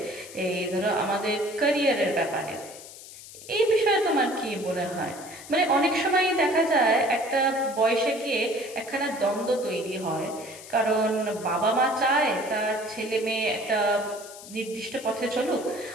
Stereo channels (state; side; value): noise; left; hiss, 16 dB below the sound